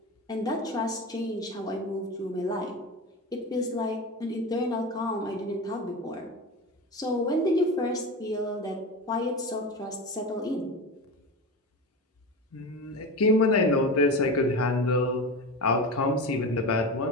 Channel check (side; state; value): both; normal; correlation 0.26